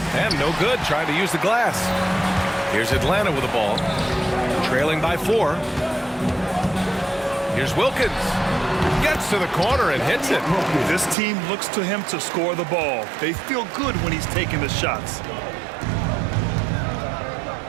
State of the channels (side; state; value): left; drops out; at 11.2 s